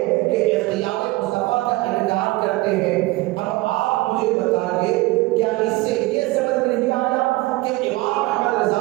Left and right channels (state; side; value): quieter; left; 20.7 dB